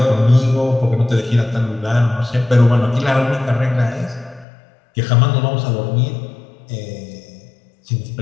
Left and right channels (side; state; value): right; drops out; at 4.5 s